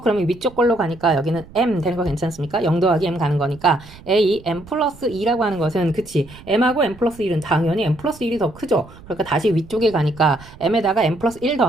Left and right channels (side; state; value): right; noise; rumble, 20 dB below the sound